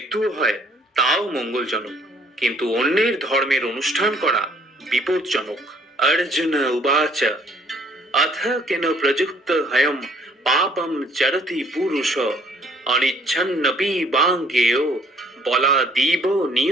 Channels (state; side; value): normal; both; correlation 0.61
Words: হয় তাও মঙ্গলজনক, কিন্তু অন্যের ধর্মের অনুষ্ঠান করা বিপজ্জনক। অর্জুন উবাচ অথ কেন প্রযুক্ত হয়ম পাপম চরতি পুরুষ অনিচ্ছন্নপি বাঙ্গেয় বলাদীব